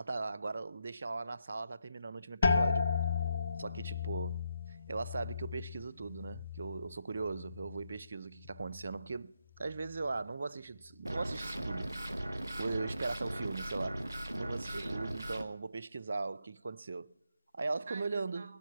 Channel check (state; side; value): inverted; both; correlation -0.82